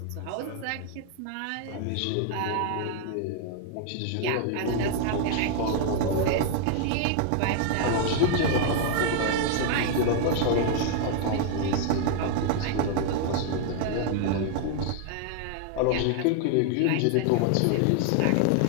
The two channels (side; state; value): both; different; correlation 0.00